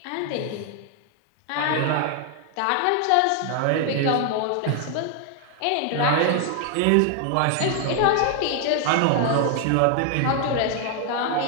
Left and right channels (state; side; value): different; both; correlation 0.00